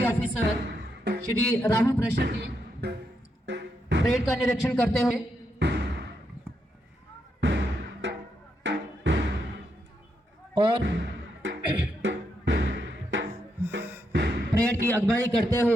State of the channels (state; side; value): normal; both; correlation 0.81